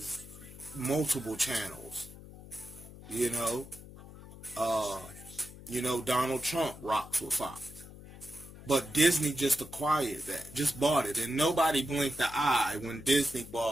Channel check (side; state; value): left; noise; hum, 16 dB below the sound